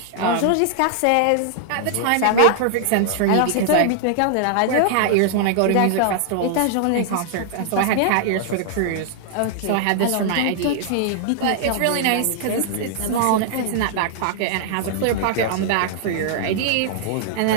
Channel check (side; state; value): both; different; correlation -0.01